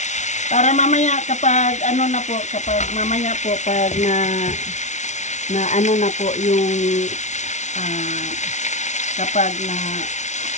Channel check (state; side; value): late; right; 0.34 ms